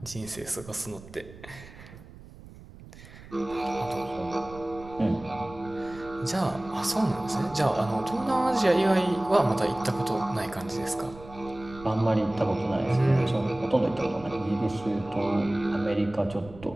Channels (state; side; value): noise; right; rumble, 18 dB below the sound